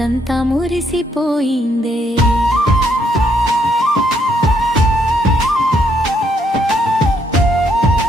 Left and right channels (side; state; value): both; normal; correlation 0.72